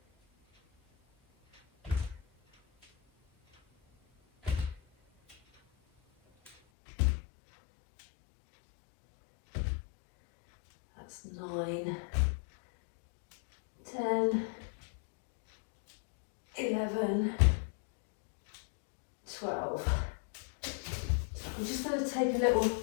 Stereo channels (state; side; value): drops out; right; at 6.6 s